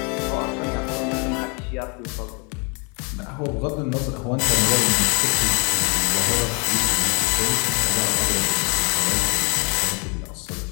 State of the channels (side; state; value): right; quieter; 33.9 dB